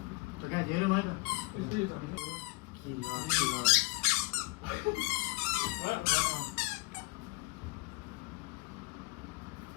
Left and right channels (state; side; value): quieter; right; 25.5 dB